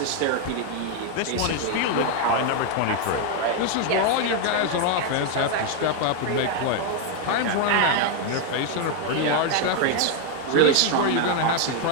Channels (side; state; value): both; different; correlation 0.01